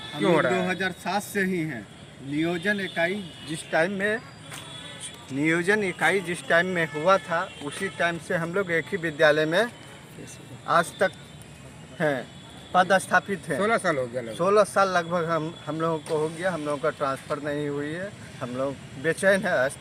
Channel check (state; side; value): identical; both; correlation 1.00